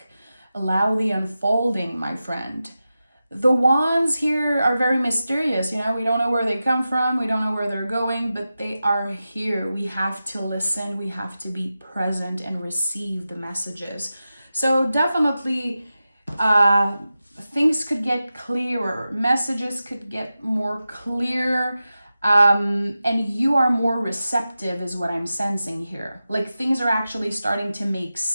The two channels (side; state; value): both; inverted; correlation -0.93